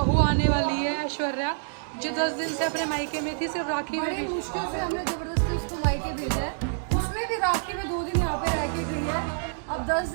आने वाली है ऐश्वर्या, जो 10 दिन से अपने मायके में थी, सिर्फ राखी में बड़ी भी। मुश्किल से हमने जबरदस्ती उसको मायके भेजा है। उसमें भी राखी में 2 दिन यहाँ पे रह के गई है। अब 10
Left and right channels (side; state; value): left; silent; digital silence